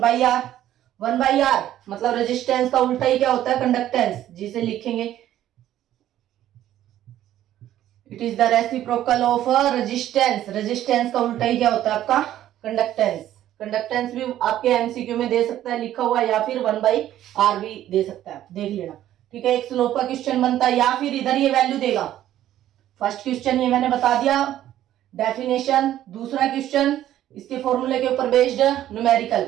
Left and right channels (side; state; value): left; quieter; 12.5 dB